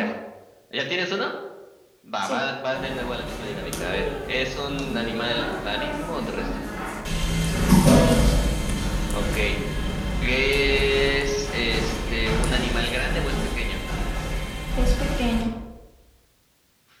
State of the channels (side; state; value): both; identical; correlation 1.00